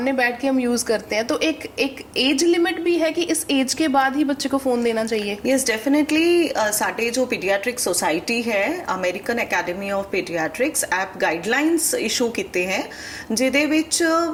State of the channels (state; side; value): identical; both; correlation 1.00